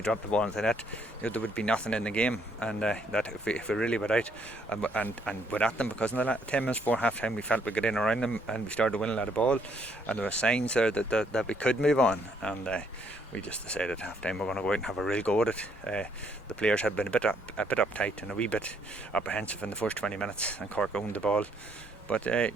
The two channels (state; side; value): normal; both; correlation 0.69